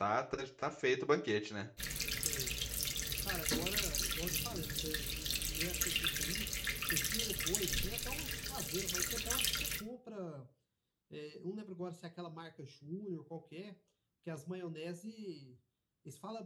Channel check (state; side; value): identical; both; correlation 1.00